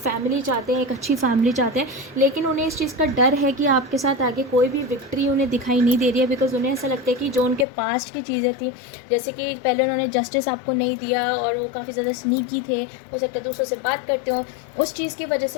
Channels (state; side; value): drops out; right; at 7.7 s